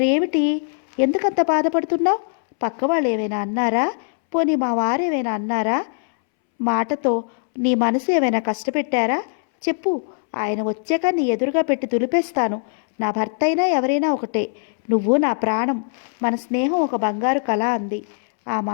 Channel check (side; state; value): right; silent; 65 dB below the other